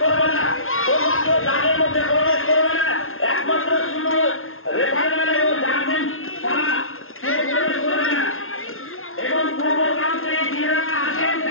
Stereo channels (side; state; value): right; late; 0.61 ms